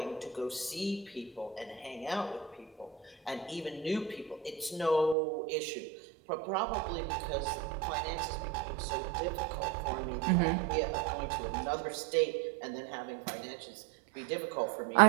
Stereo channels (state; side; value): drops out; left; at 5.2 s